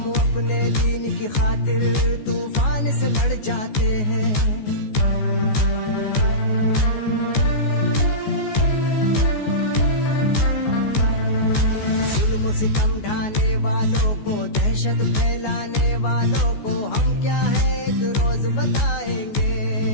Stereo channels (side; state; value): right; late; 14 ms